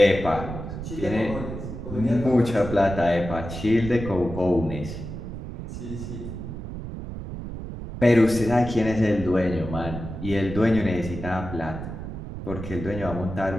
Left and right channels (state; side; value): noise; right; rumble, 8 dB below the sound